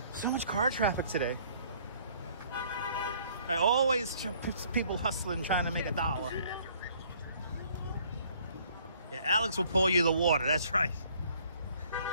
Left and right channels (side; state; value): both; inverted; correlation -0.60